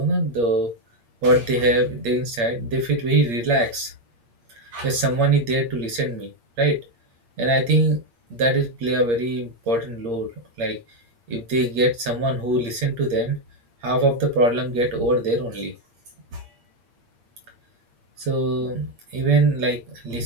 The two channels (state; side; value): late; left; 8.6 ms